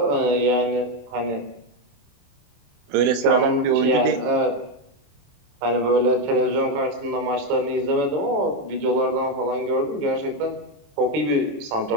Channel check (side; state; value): left; late; 28 ms